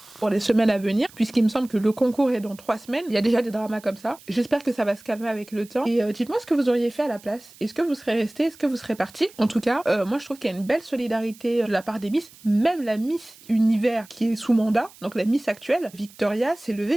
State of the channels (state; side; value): noise; right; hiss, 23 dB below the sound